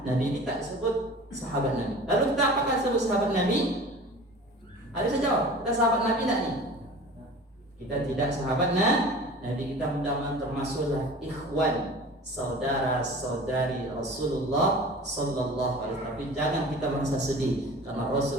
Ini tak disebut sahabat Nabi. Lalu kita apakah disebut sahabat Nabi? Ada saya jawab, kita sahabat Nabi tak nih? Kita tidak sahabat Nabi. Kita mudah-mudahan termasuklah ikhwan, saudara-saudari Rasulullah sallallahu alaihi wasallam. Tapi jangan kita merasa sedih karena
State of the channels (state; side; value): normal; both; correlation 0.40